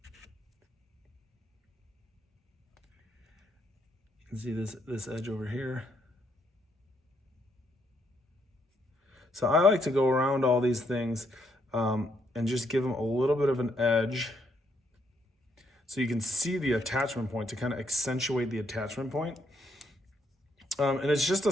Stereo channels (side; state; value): both; normal; correlation 0.74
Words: You can see this edge over here. So I like to go around all these things and just give them a little bit of an edge so you can see the attachment point to kind of accentuate the attachment point. And it's just